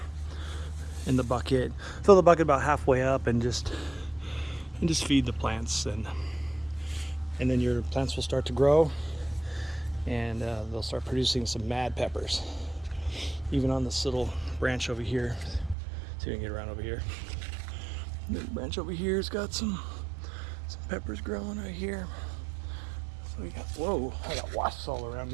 in the bucket. Fill the bucket about halfway up, and just feed the plants, and then your plants will start to grow, and they'll start producing some mad peppers. Even on this little branch over here. See if we can get around over here. The branch over here has got some peppers growing right here. So we got, whoa, I got wasps all around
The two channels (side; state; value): left; drops out; at 15.8 s